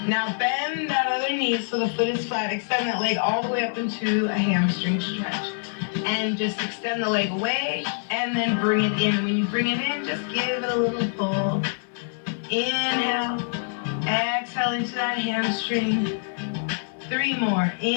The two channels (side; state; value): right; silent; 62 dB below the other